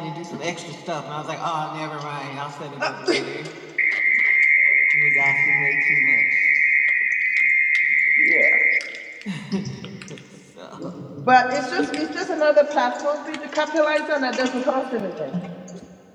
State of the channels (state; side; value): identical; both; correlation 1.00